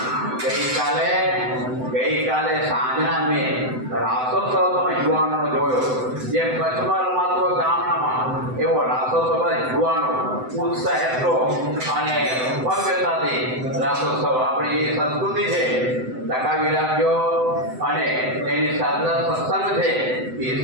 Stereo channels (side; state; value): left; late; 7.9 ms